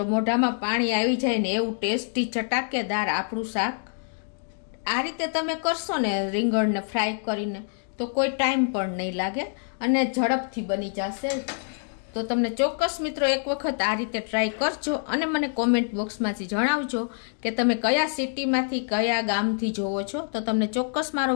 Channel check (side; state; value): right; silent; 61 dB below the other